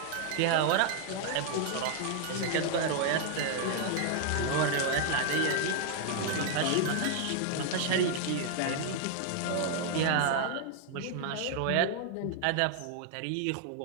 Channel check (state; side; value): different; both; correlation 0.00